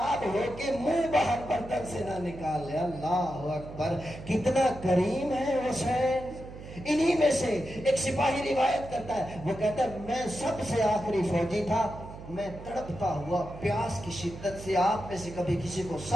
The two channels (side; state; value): right; noise; hum, 14 dB below the sound